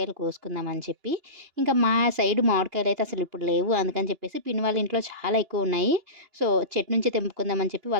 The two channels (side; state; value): left; late; 2.9 ms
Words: కోసుకుందాం అని చెప్పి. ఇంకా మా సైడ్ మామిడికాయలయితే అసలిప్పుడు లేవు. అందుకని చెప్పేసి పిన్ని వాళ్ళ ఇంట్లో చాలా ఎక్కువున్నాయి. సో, చెట్టు నుంచి తెంపుకుందాం అని చెప్పి